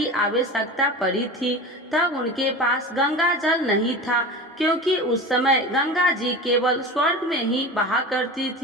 आवश्यकता पड़ी थी। तब उनके पास गंगा जल नहीं था, क्योंकि उस समय गंगा जी केवल स्वर्ग में ही बहा करती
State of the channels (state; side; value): normal; both; correlation 0.31